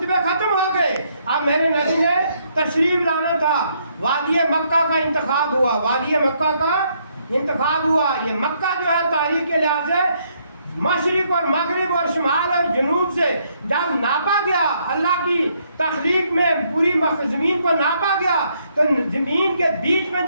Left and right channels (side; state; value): both; inverted; correlation -0.72